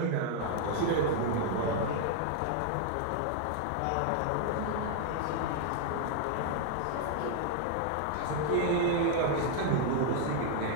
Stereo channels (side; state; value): both; different; correlation 0.00